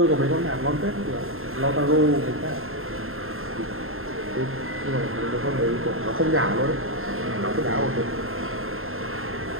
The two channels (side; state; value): left; late; 0.61 ms